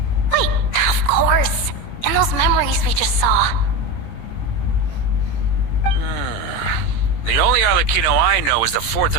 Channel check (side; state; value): right; late; 18 ms